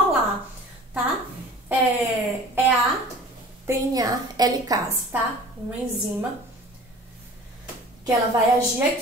tá? É a DNA helicase, tá? Uma enzima que ela vai agir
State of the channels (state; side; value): normal; both; correlation 0.44